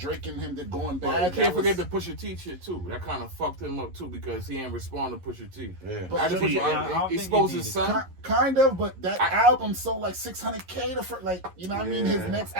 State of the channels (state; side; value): late; left; 11 ms